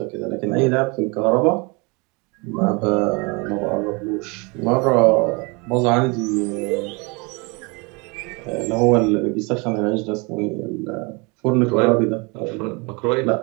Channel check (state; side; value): quieter; left; 29.2 dB